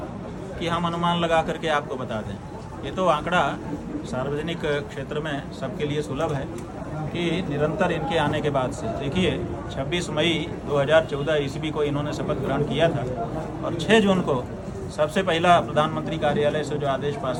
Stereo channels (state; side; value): identical; both; correlation 1.00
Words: कि हम अनुमान लगा करके आपको बता दें। ये तो आंकड़ा सार्वजनिक क्षेत्र में सबके लिए सुलभ है कि निरंतर इनके आने के बाद से, देखिए 26 मई 2014 ईस्वी को इन्होंने शपथ ग्रहण किया था और 6 जून को सबसे पहला प्रधानमंत्री कार्यालय से जो आदेश